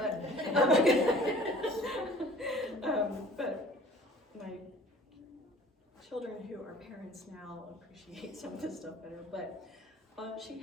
but my children who are parents now appreciate some of this stuff better. But she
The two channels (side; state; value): both; normal; correlation 0.49